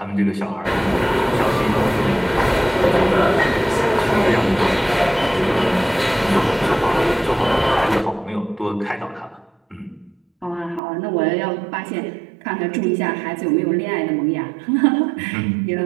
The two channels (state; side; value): drops out; left; at 10.8 s